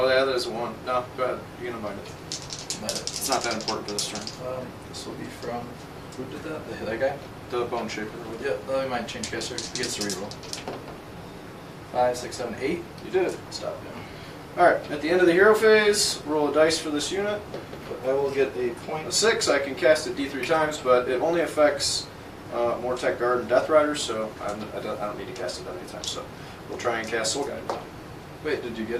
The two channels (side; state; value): both; identical; correlation 1.00